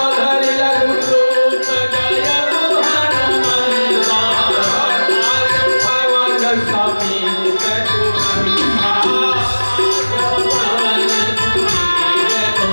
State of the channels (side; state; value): both; inverted; correlation -1.00